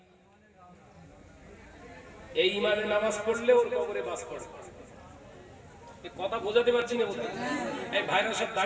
এই ইমানে নামাজ পড়লে ওর কবরে বাস পড়ে। কথা বোঝাতে পারছি না বলতে? এই ভাইরা সব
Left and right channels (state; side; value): identical; both; correlation 1.00